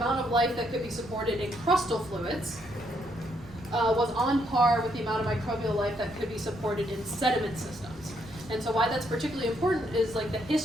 of life that could be supported in crustal fluids was on par with the amount of microbial life that could be supported in sediment systems. And so why that's particularly important is like the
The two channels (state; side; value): noise; right; rumble, 20 dB below the sound